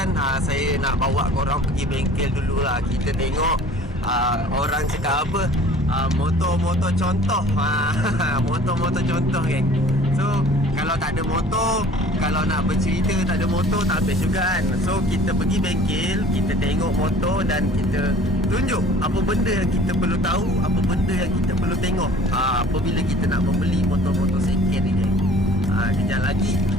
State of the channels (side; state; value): both; normal; correlation 0.49